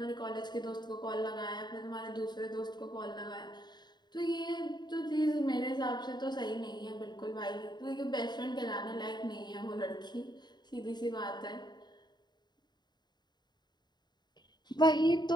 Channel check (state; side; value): late; right; 0.21 ms